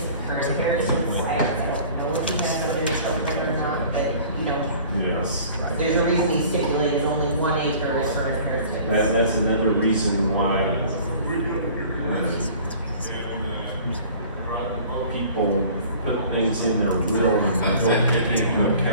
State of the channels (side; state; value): both; inverted; correlation -0.47